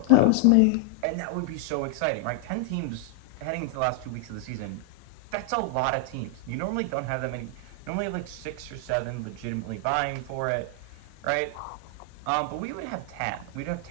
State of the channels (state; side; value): different; both; correlation 0.00